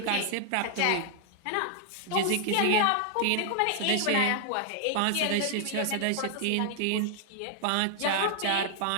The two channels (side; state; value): both; different; correlation 0.00